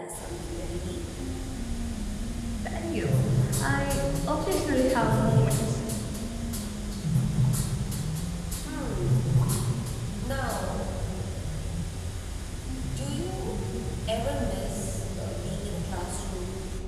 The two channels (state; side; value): identical; both; correlation 1.00